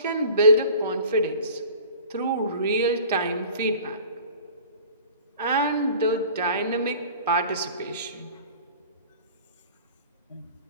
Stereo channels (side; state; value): both; inverted; correlation -0.44